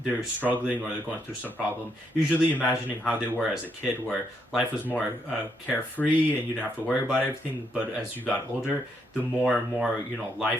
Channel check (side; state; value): both; normal; correlation 0.76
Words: struggling or they're going through some problem, usually imagining how they were as a kid where life was more carefree and you didn't have to worry about everything. But as you got older, the more and more